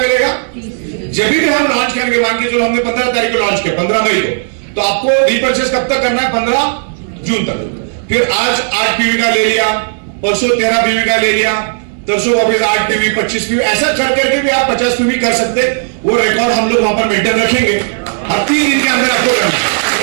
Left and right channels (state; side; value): silent; left; digital silence